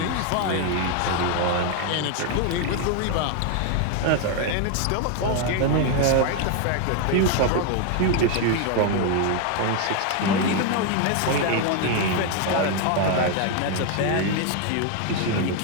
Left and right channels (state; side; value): different; both; correlation 0.01